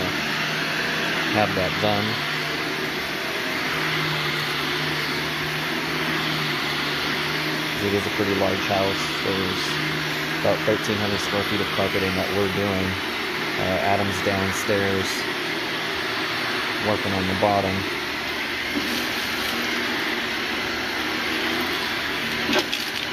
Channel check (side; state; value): both; identical; correlation 1.00